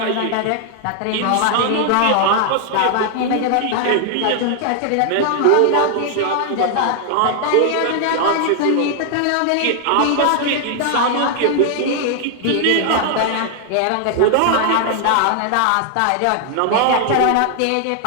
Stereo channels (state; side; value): different; both; correlation 0.00